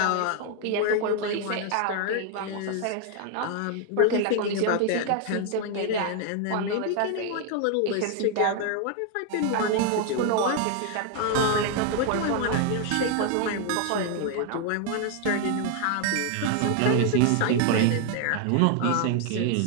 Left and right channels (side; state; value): both; different; correlation 0.00